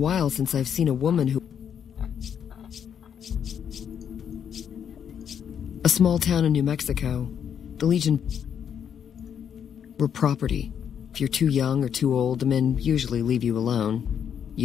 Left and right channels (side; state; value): right; quieter; 8.3 dB